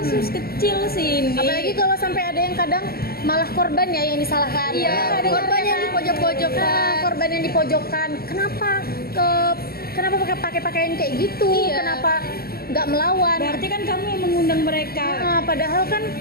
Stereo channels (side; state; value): right; late; 0.44 ms